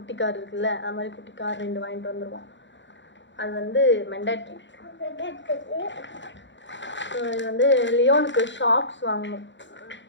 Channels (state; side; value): late; right; 0.54 ms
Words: கார் இருக்குல்ல, அது மாதிரி குட்டி கார் 2 வாங்கிட்டு வந்துடுவான். அது வந்து மெண்டாட்ரி. இது வந்து லியோனுக்கு ஷாக்ஸ் வாங்கணும்.